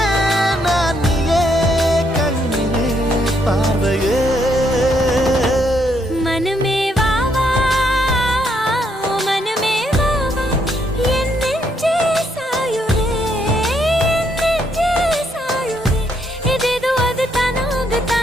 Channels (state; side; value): normal; both; correlation 0.73